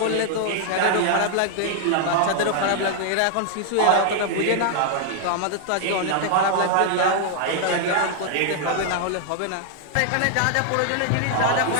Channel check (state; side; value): different; both; correlation 0.00